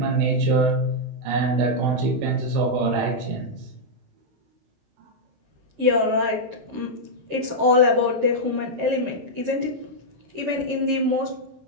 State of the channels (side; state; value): left; late; 16 ms